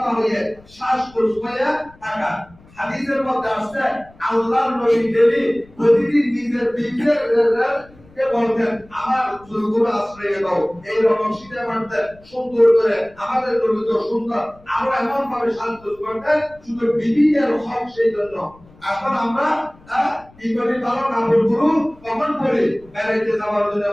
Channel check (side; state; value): left; noise; rumble, 26 dB below the sound